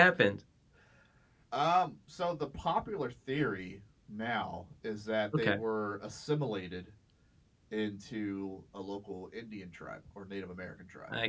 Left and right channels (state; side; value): identical; both; correlation 1.00